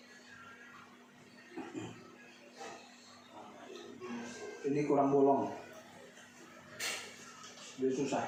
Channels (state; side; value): identical; both; correlation 1.00